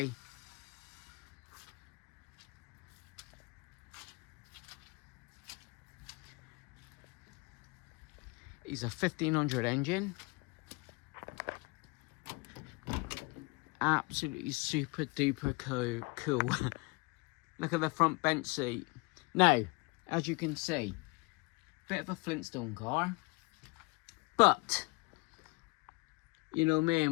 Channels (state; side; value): quieter; right; 27.3 dB